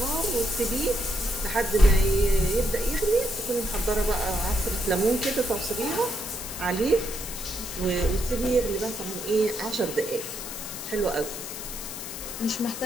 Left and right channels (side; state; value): left; noise; hiss, 8 dB below the sound